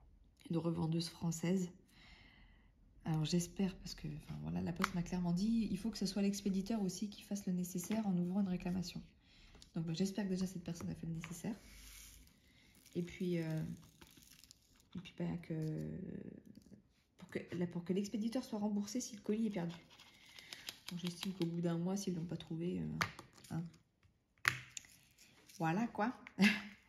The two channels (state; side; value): identical; both; correlation 1.00